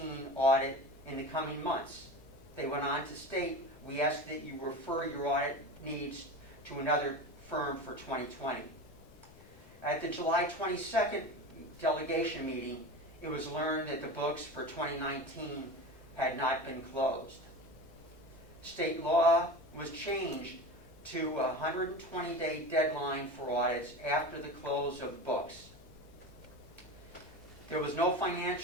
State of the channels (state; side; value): noise; left; rumble, 22 dB below the sound